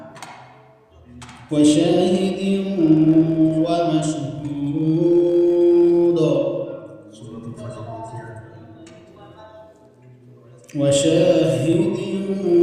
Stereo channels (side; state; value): both; identical; correlation 1.00